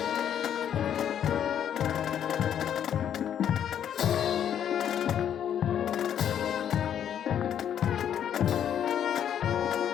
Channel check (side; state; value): right; quieter; 9.5 dB